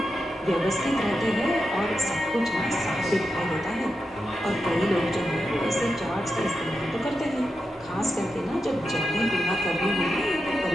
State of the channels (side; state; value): both; normal; correlation 0.88